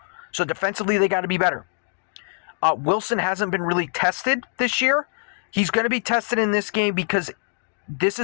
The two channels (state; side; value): silent; right; 63 dB below the other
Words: So defensively, they got to be better. Wilson hasn't been really tested this year. He's going to be tested in this game because this